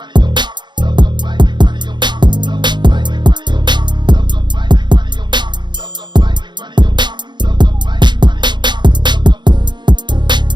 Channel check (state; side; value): late; left; 0.22 ms